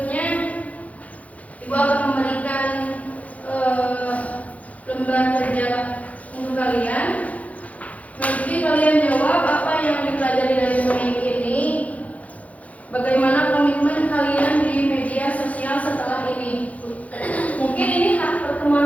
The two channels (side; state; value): right; late; 0.069 ms